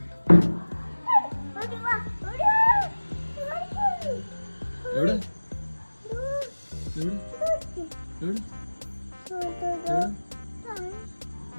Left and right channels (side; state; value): both; inverted; correlation -1.00